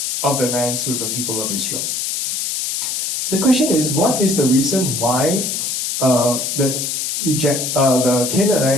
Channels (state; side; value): noise; left; hiss, 2 dB below the sound